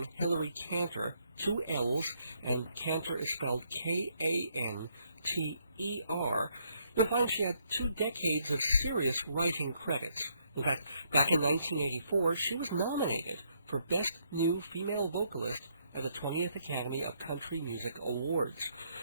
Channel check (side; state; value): both; inverted; correlation -0.73